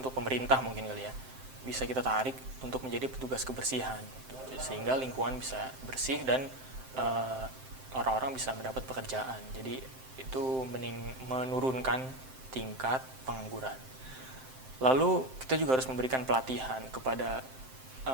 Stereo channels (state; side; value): late; left; 7.7 ms